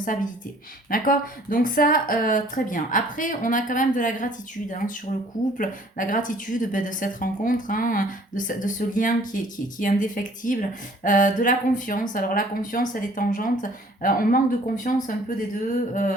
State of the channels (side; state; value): both; normal; correlation 0.55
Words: D'accord? Donc ça, très bien. Après, on a quand même de la gratitude hein, sur le couple, la gratitude de cette rencontre, hein, de de ce lien qui est indéfectible, de la confiance. Alors la confiance, elle est tangente. On manque de confiance un peu des deux.